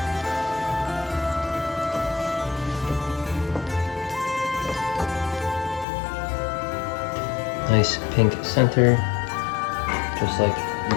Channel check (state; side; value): drops out; right; at 5.9 s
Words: Nice pink center, just like you